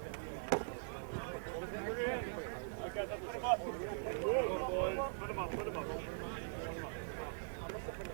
Put him up.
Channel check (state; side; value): silent; left; digital silence